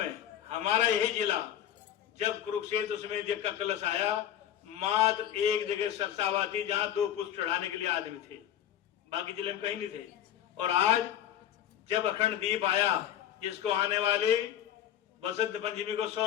हमारा यही जिला, जब कुरुक्षेत्र समेत यज्ञ का कलश आया, मात्र एक जगह सरसावा थी जहां 2 पुष्प चढ़ाने के लिए आदमी थे, बाकी जिले में कहीं नहीं थे। और आज जब अखंड दीप आया, जिसको आने वाले बसंत पंचमी को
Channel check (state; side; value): quieter; right; 10.9 dB